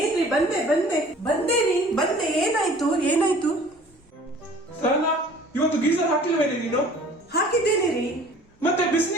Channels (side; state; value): both; normal; correlation 0.49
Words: ಬಂದೆ. ಏನಾಯ್ತು? ಸಾನಾ, ಇವತ್ತು ಗೀಸರ್ ಹಾಕಿಲ್ವೇನೆ ನೀನು? ಹಾಕಿದ್ದೇನೆ ರೀ. ಮತ್ತೆ